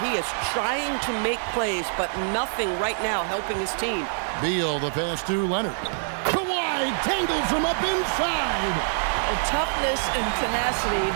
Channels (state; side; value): silent; left; 61 dB below the other